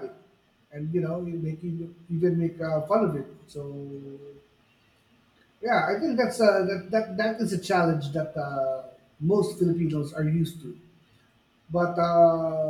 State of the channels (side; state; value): both; identical; correlation 1.00